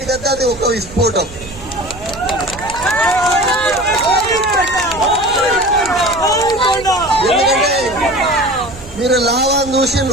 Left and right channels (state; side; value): noise; right; rumble, 17 dB below the sound